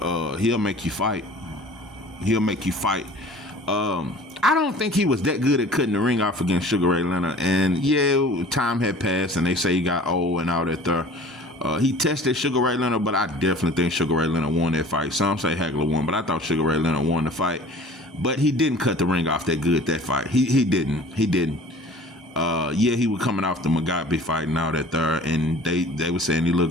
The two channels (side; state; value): both; normal; correlation 0.46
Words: he'll make you fight. I don't think he was that good at cutting the ring off against Sugar Ray Leonard. And yeah, time had passed, and they say he got old and all that there. He tested Sugar Ray Leonard, but I definitely think Sugar Ray Leonard won that fight. Some say Hagler won, but I thought Sugar Ray Leonard won the fight. But he didn't cut the ring off that good that fight. He didn't. Yeah, he was coming off the Mugabe fight and all that there, and they were saying he